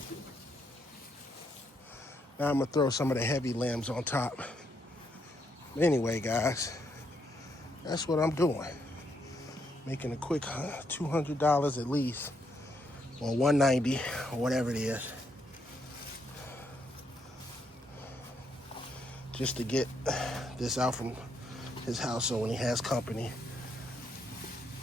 Now I'm gonna throw some of the heavy limbs on top. Anyway, guys, that's what I'm doing. Making a quick $200 at least, or $190, or whatever it is, just to get this out from his house so when he has company,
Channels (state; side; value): normal; both; correlation 0.76